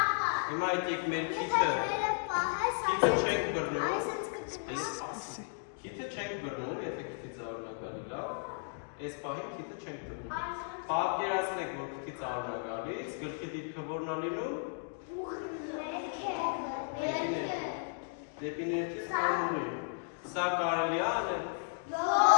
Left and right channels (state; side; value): silent; right; digital silence